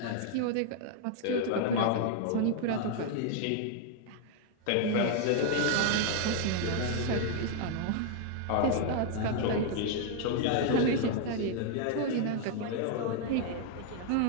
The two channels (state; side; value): different; both; correlation 0.00